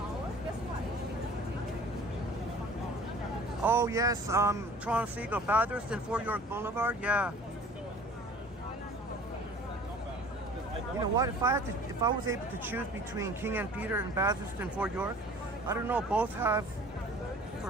Oh yes, Toronto Seagull, Bathurst and Fort York Boulevard. Yeah. You know what? If I was able to choose between King and Peter and Bathurst and Fort York, I don't know. Both have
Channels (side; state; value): both; normal; correlation 0.47